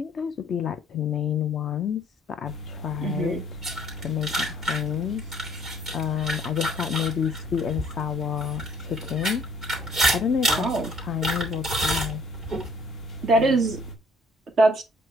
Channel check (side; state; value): both; normal; correlation 0.59